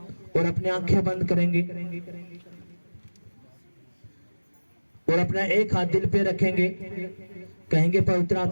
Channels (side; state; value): both; inverted; correlation -1.00